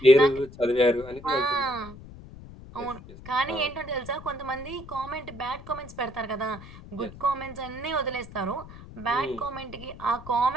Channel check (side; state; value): left; noise; rumble, 16 dB below the sound